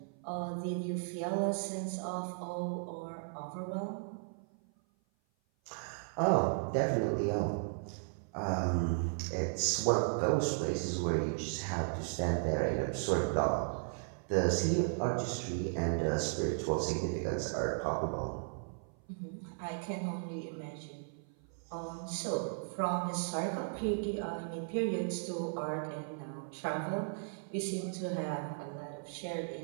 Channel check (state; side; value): silent; left; 54 dB below the other